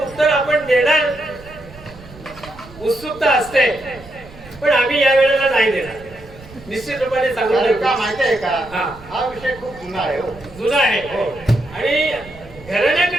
उत्तर आपण देणार उत्सुकता असते, पण आम्ही या वेळेला नाही देणार. निश्चित रूपाने सांगून का माहिती आहे का? हा. हा विषय खूप जुना आहे हो. जुना आहे आणि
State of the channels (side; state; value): right; noise; rumble, 19 dB below the sound